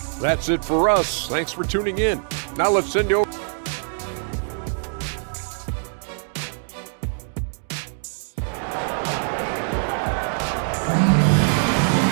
That's it for us. Thanks for tuning in. Now let's send you over.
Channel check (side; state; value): left; silent; 63 dB below the other